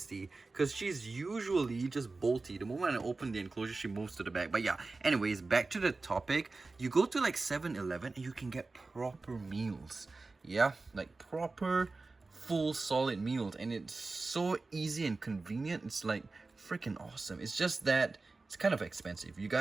Because she's usually just bolty. The moment I open the enclosure, she moves to the back. But yeah, anyways, back to the topic. You go to like 7-Eleven and you can get proper meals. Yeah, like proper, full, solid meals. And it's so easy and convenient. It's like freaking awesome. It's just that it's kind of expensive. You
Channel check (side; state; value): left; quieter; 3.6 dB